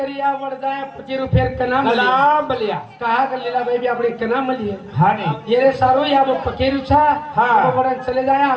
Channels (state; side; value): identical; both; correlation 1.00